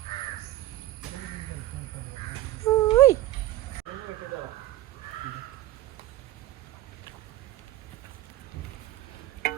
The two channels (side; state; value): left; quieter; 15.1 dB